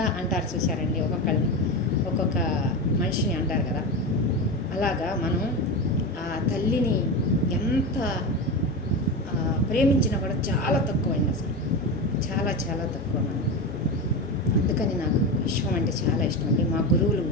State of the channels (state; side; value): normal; both; correlation 0.20